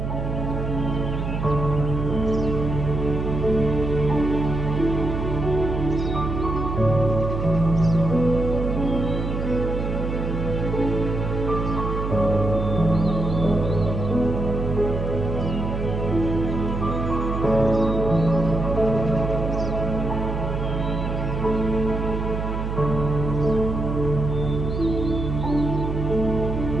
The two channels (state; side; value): noise; right; hum, 3 dB below the sound